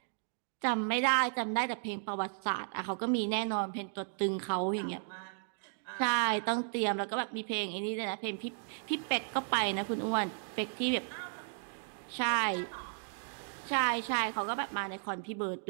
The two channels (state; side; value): silent; left; digital silence